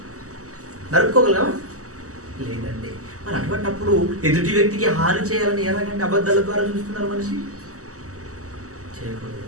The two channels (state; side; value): late; left; 0.66 ms